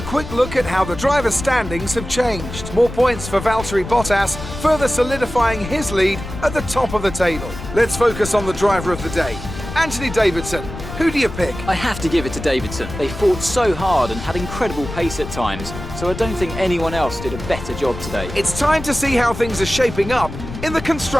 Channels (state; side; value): noise; left; rumble, 10 dB below the sound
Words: quick look at how the driver standings have changed. More points for Valtteri Bottas, further solidifying his lead at the top of the table. Let's focus on the driver of the day, Anthony Davidson. Who do you pick? I have to give it to Davidson. They fought so hard and had incredible pace at times, so I don't think anyone else did a better job today. It's time to see how things are shaping up in the